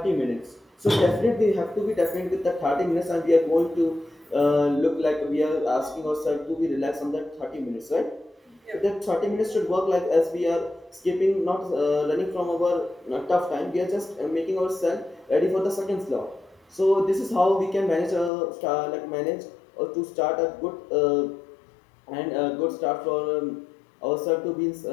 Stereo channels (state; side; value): drops out; right; at 18.3 s